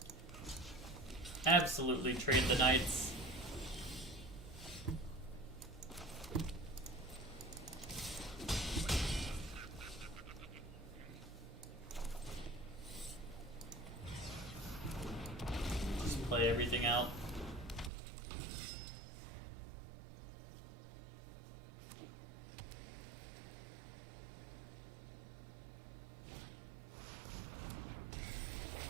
Absolutely trade the knights. Just play everything out.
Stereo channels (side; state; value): left; drops out; at 17.9 s